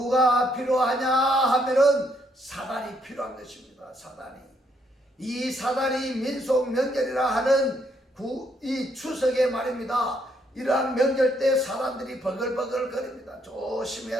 필요하냐 하면은 사단이 필요한 것입니다. 이 사단이 민속 명절이라 하는 이 추석에 말입니다. 이러한 명절 때 사람들이 버글버글 거립니다.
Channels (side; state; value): both; normal; correlation 0.72